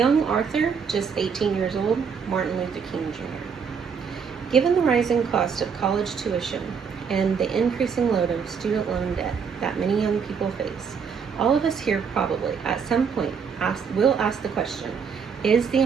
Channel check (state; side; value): quieter; left; 6.3 dB